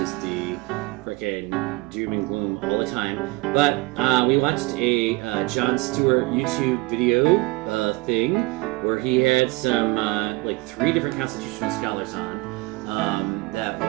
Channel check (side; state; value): left; quieter; 23.0 dB